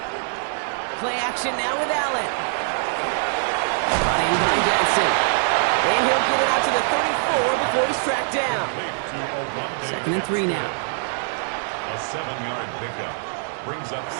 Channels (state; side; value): silent; left; 63 dB below the other